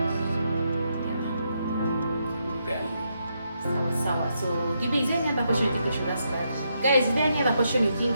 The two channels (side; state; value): both; inverted; correlation -0.80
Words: Sawa. So, Gibi, is there any other question you think we should ask Dad? Guys, is there any other question you